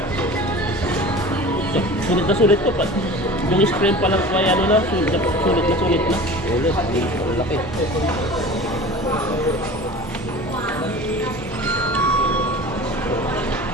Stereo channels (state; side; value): normal; both; correlation 0.38